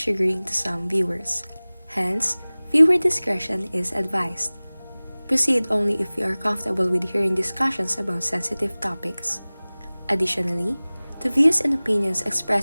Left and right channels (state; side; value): inverted; both; correlation -1.00